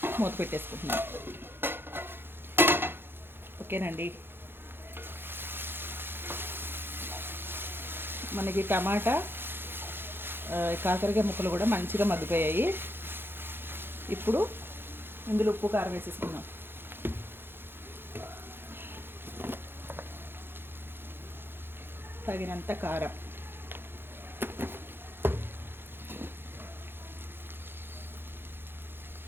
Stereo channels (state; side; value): late; left; 0.10 ms